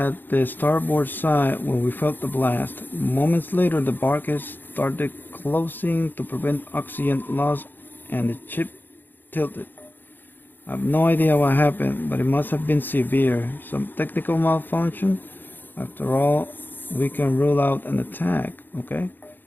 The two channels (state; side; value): late; right; 0.092 ms